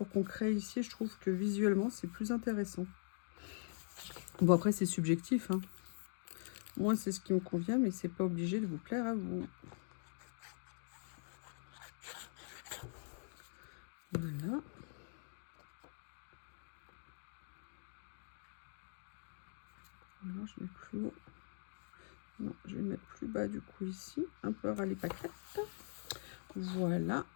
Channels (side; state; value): right; silent; digital silence